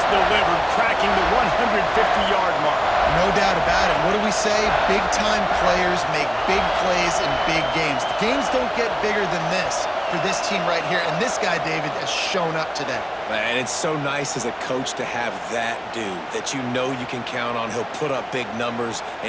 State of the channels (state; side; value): identical; both; correlation 1.00